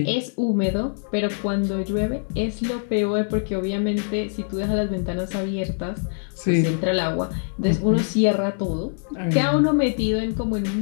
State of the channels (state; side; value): silent; right; digital silence